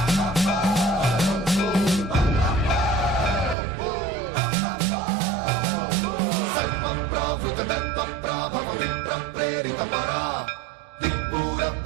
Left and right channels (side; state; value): left; drops out; at 3.6 s